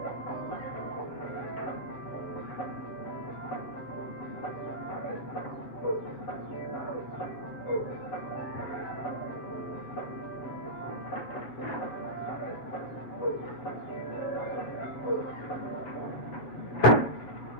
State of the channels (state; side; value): late; right; 7.6 ms